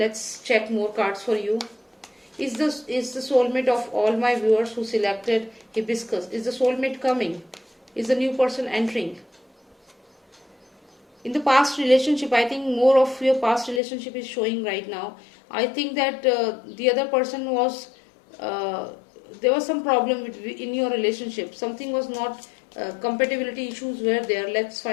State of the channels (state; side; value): drops out; right; at 13.8 s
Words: check more cards for you. Is the soulmate of all my viewers who selected hibiscus, is the soulmate coming? Is the new person entering? In the past relationship, I think more of your past relationship is showing right now. I think that the other person was uh, there was some problem in your relationship. Something was not compatibility issues were there. Let's